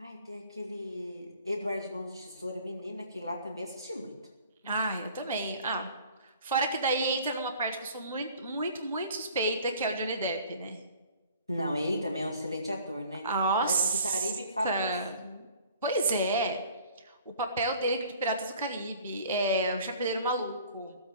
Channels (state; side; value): inverted; both; correlation -0.50